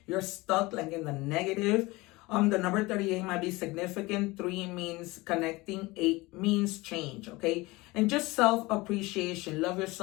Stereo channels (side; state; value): right; quieter; 21.9 dB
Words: You're stuck, like, in the negative. The number 38 might be significant. 3 means connecting. 8 means change, okay? And just self-appreciation. Love